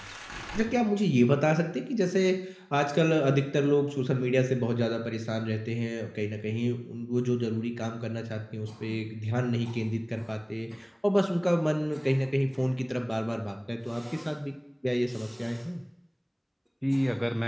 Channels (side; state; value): both; identical; correlation 1.00